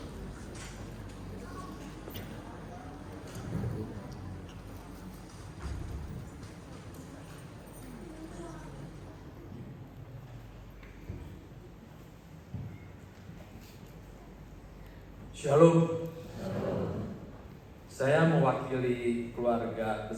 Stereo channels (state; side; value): identical; both; correlation 1.00